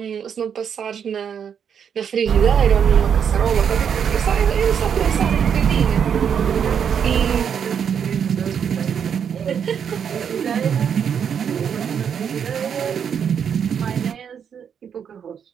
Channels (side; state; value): left; quieter; 7.7 dB